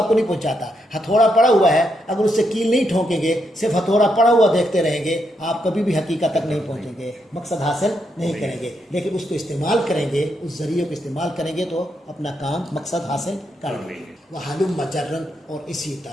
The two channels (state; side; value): normal; both; correlation 0.80